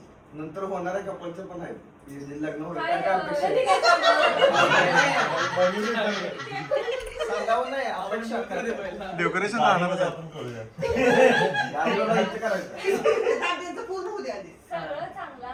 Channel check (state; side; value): identical; both; correlation 1.00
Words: नंतर होणाऱ्या कपलचं पण आहे लग्न होणार काय काय अपेक्षा कधी काय सांगावं नाही अपेक्षा डेकोरेशन राहणार आपण करूया करायचं त्यांचं पूर्ण होऊ द्या आधी. सगळं चांगलं